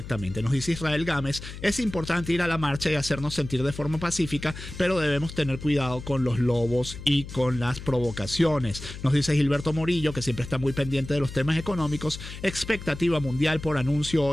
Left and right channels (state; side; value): noise; left; hum, 11 dB below the sound